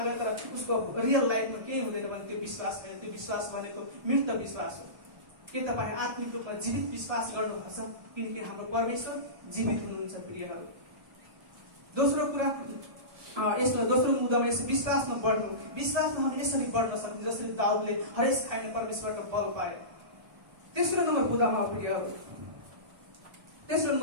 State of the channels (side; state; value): left; late; 1.3 ms